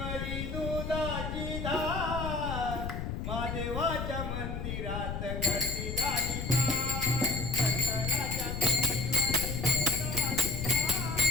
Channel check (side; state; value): left; noise; rumble, 4 dB below the sound